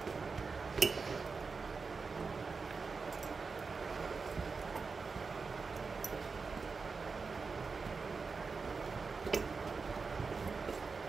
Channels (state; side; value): quieter; left; 4.7 dB